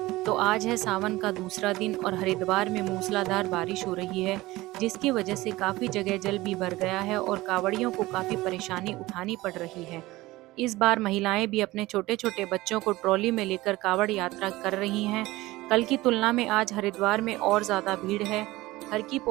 तो आज है सावन का दूसरा दिन और हरिद्वार में मूसलाधार बारिश हो रही है, जिसकी वजह से काफी जगह जल भी भर गया है और कांवड़ियों को काफी परेशानी उठानी पड़ रही है। इस बार महिलाएं भी अपने छोटे छोटे बच्चों को ट्रॉली में लेकर कांवड़ यात्रा कर रही हैं। कल की तुलना में आज हरिद्वार में और ज्यादा भीड़ है। हर की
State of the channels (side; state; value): left; quieter; 19.0 dB